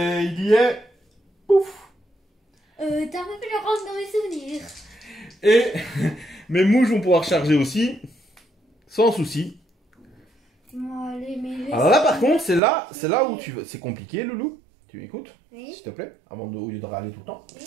il y est. Pouf. T'as un peu pu le rendre dans mes souvenirs. Et mes mouches vont pouvoir charger aussi, sans souci. Bon, allez, mais laisse. Alors là, par contre, c'est là où tu veux. C'est compliqué, Loulou. Tu m'écoutes, Oui. s'il te plaît, au lieu de râler tout le temps. Oui.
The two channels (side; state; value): left; drops out; at 12.6 s